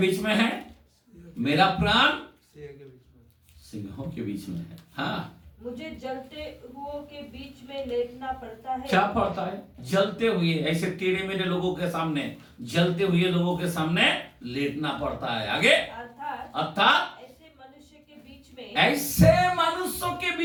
में है? मेरा प्राण सिंहों के बीच में है। हाँ, मुझे जलते हुओं के बीच में लेटना पड़ता है। क्या पड़ता है? जलते हुए, ऐसे टेढ़े मेढ़े लोगों के सामने, जलते हुए लोगों के सामने लेटना पड़ता है। आगे, अर्थात ऐसे मनुष्य के बीच में, ऐसे मनुष्यों के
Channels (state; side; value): identical; both; correlation 1.00